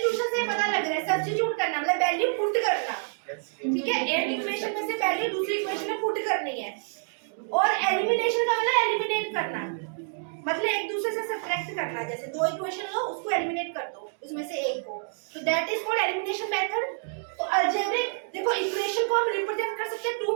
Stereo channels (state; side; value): silent; left; 60 dB below the other